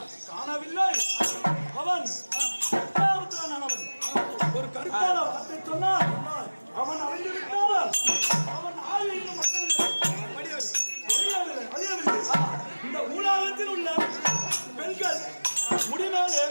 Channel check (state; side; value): inverted; both; correlation -1.00